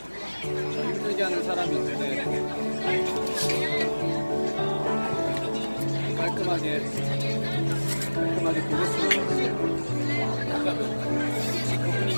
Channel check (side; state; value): both; inverted; correlation -1.00